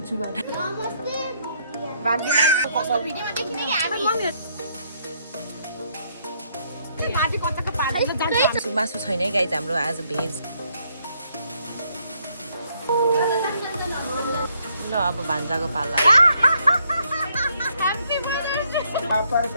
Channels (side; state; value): both; inverted; correlation -0.71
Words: मासु छैन है गाइज हाम्रो आज भेज ल अब भान्जाको पाला